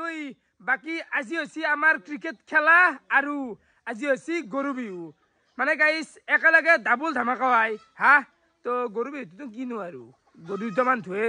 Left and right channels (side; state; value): both; identical; correlation 1.00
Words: বাকি আজি হইছি আমার ক্রিকেট খেলা আৰু আজি হইছি গরু বিহু মানে গাইস একেলগে ডাবল ধামাকা হয় হা তো গরু বিহু তো কিনো আৰু গরু দুটামান